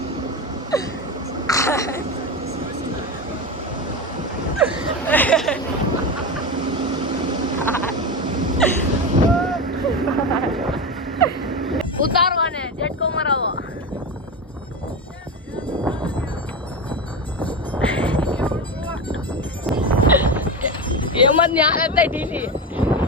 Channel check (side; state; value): both; normal; correlation 0.19